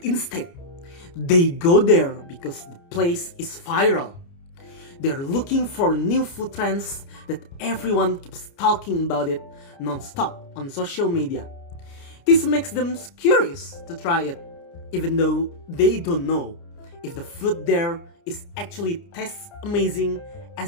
instead they go there because the place is viral. They're looking for new food trends that everyone keeps talking about it non-stop on social media. This makes them curious to try it, even though they don't know if the food there is actually tastes amazing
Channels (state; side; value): late; right; 29 ms